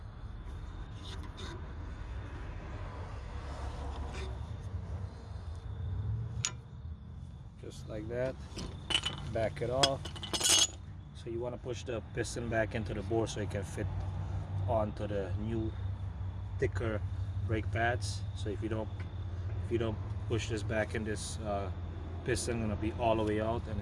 Just like that. Back it off. So you want to push the piston back into the bore so it can fit onto the new thicker brake pads. So if you don't push this back in, this piston gonna be all the way out, and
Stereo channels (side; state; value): both; identical; correlation 1.00